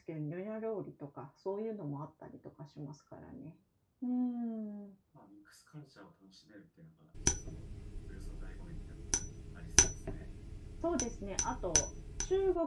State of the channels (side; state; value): both; identical; correlation 1.00